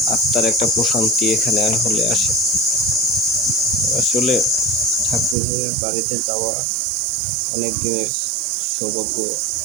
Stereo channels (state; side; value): drops out; left; at 5.4 s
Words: আত্মার একটা প্রশান্তি এখানে হলে আসে। আসলে ঠাকুরের বাড়িতে যাওয়া অনেক দিনের সৌভাগ্য